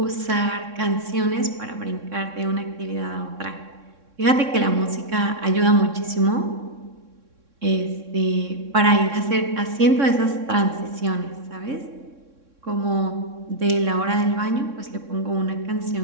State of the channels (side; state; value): left; late; 3.6 ms